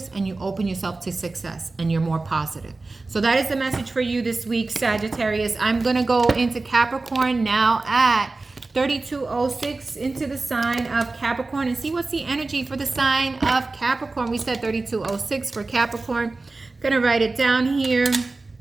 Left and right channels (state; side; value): quieter; left; 3.5 dB